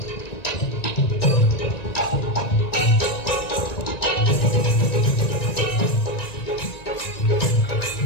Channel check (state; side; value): late; right; 1.9 ms